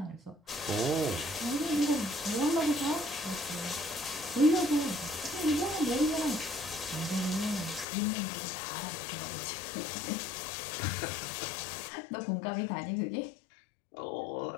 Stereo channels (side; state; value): right; drops out; at 7.9 s